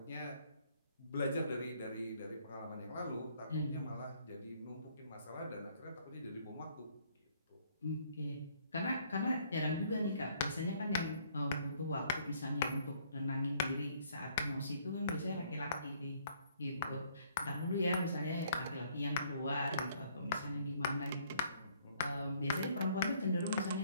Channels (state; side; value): inverted; both; correlation -0.64